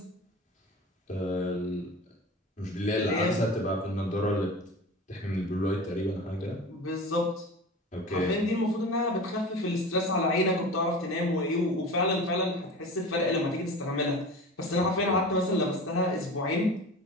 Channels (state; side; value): normal; both; correlation 0.34